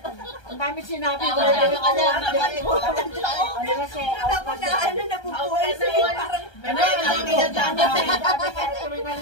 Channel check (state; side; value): late; right; 1.3 ms